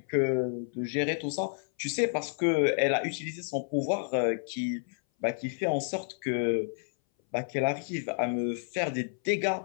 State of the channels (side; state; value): right; silent; 58 dB below the other